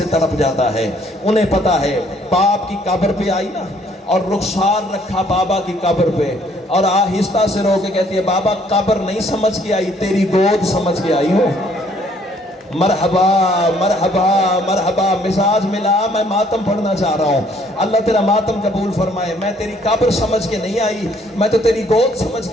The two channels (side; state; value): both; normal; correlation 0.63